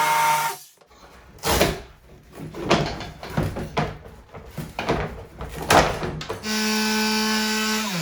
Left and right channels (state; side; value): identical; both; correlation 1.00